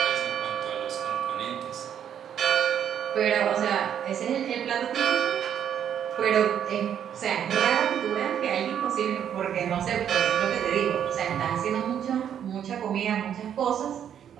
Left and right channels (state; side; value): quieter; left; 9.2 dB